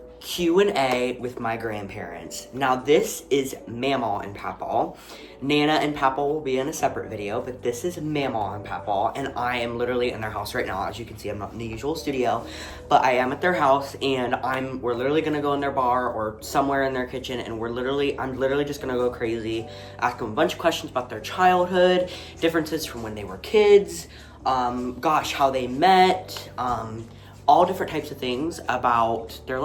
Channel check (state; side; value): identical; both; correlation 1.00